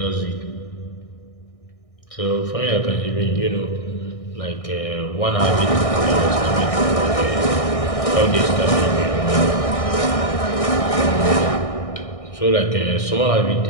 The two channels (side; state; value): right; late; 1.6 ms